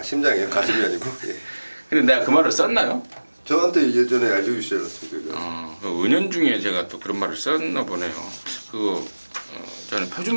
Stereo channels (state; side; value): inverted; both; correlation -1.00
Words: 심장이요? 가슴이 아니고? 예. 근데 내가 그 말을 썼나요? 저한테 예전에 알려주시지 않았습니까? 그 은연중에 제가 또 그런 말을 썼나 보네요. 저는